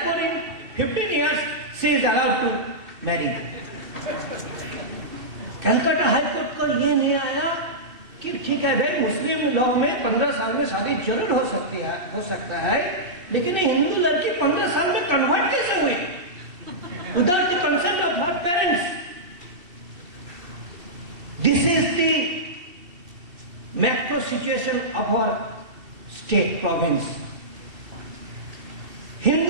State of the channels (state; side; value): late; left; 2.7 ms